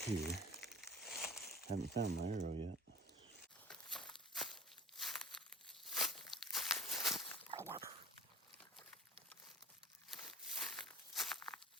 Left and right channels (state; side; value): normal; both; correlation 0.42